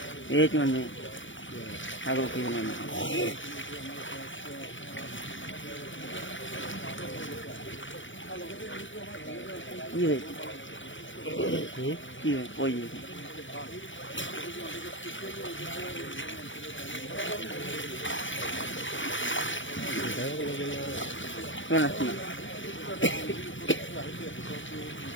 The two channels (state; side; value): late; right; 0.56 ms